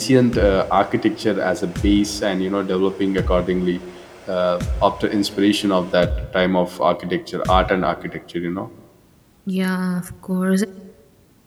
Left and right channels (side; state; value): both; identical; correlation 1.00